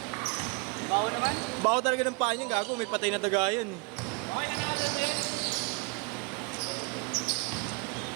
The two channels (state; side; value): quieter; left; 29.3 dB